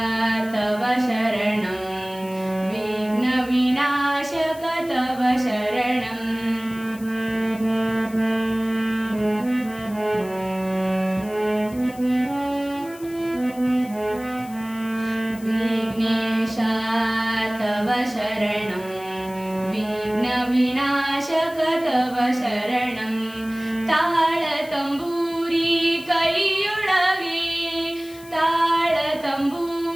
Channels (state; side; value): noise; left; hiss, 20 dB below the sound